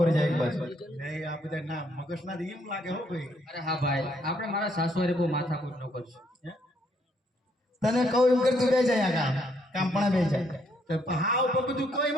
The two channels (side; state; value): both; normal; correlation 0.71